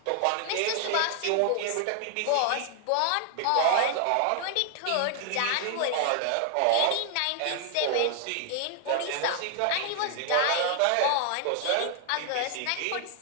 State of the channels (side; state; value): both; different; correlation 0.00